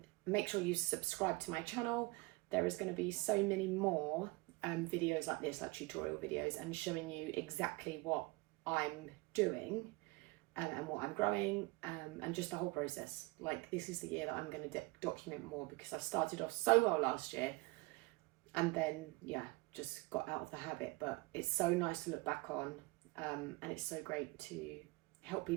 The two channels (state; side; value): quieter; left; 24.1 dB